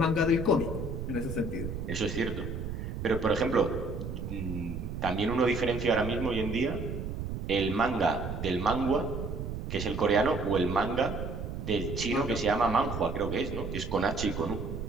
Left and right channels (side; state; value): right; noise; rumble, 5 dB below the sound